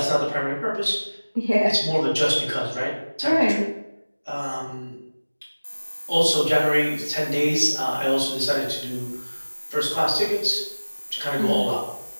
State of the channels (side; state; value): both; inverted; correlation -1.00